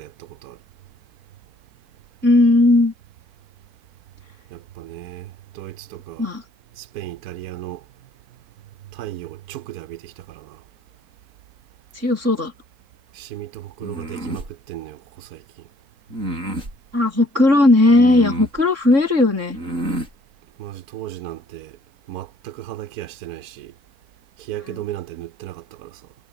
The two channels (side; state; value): left; late; 3.6 ms